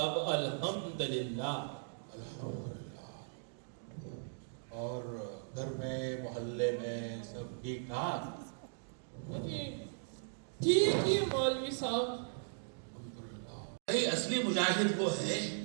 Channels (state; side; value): silent; left; digital silence